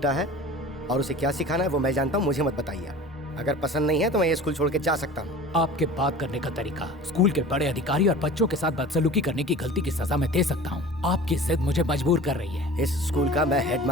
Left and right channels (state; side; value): normal; both; correlation 0.40